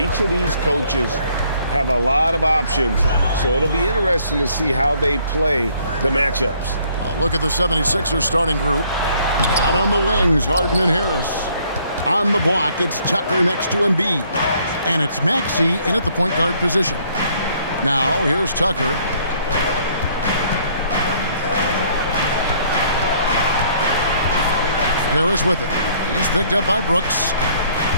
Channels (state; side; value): inverted; both; correlation -0.63